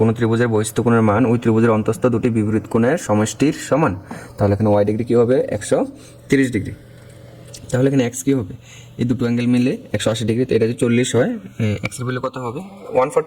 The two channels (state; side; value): identical; both; correlation 1.00